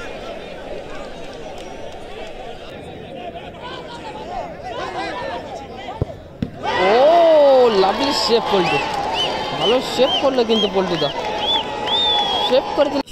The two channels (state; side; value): identical; both; correlation 1.00